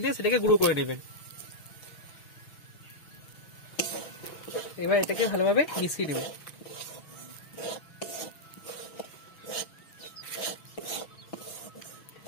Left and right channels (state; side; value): late; right; 6.6 ms